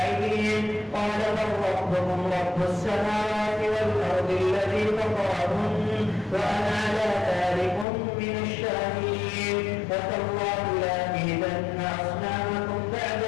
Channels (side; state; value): right; drops out; at 7.9 s